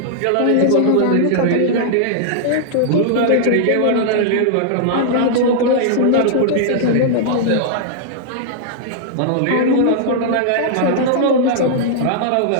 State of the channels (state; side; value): different; both; correlation -0.01